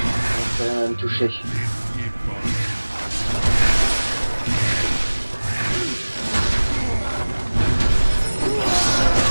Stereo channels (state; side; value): inverted; both; correlation -1.00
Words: on peut rien me toucher.